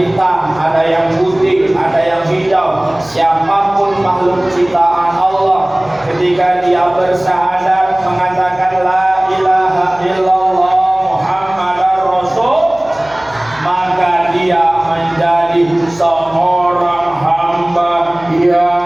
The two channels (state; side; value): noise; left; hum, 25 dB below the sound